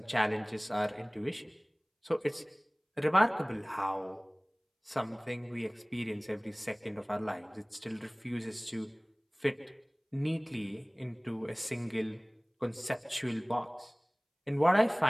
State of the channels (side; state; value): both; identical; correlation 1.00